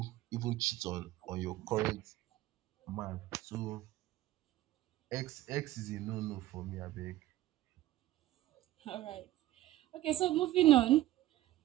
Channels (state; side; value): quieter; left; 15.4 dB